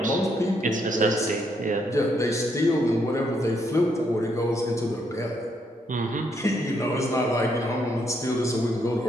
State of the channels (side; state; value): both; normal; correlation 0.74